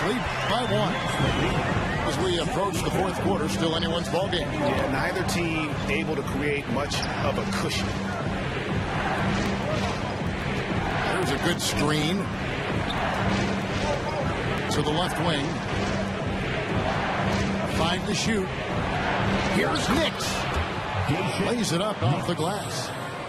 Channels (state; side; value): identical; both; correlation 1.00